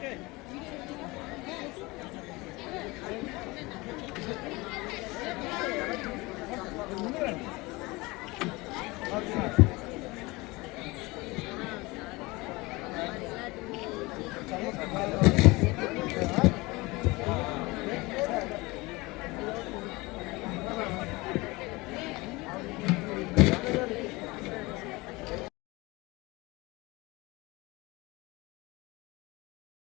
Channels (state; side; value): quieter; right; 23.0 dB